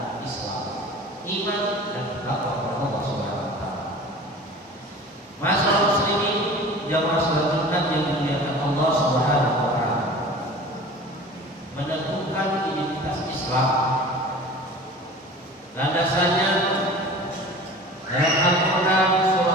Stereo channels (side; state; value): both; normal; correlation 0.40